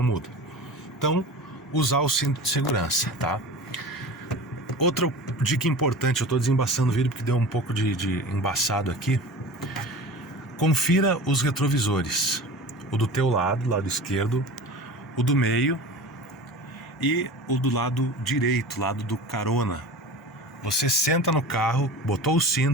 muda. Então, usar o cinto de segurança, tá? Outra dica importante, eu estou desembaçando o vídeo porque deu um pouco de embaçado aqui. Confira os retrovisores, o do teu lado esquerdo, o do meio e o do lado direito, lado do carona. Você senta no carro, botou o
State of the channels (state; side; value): normal; both; correlation 0.35